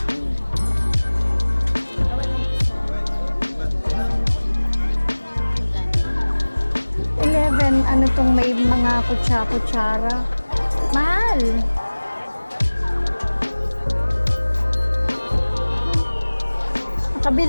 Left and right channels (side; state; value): both; inverted; correlation -1.00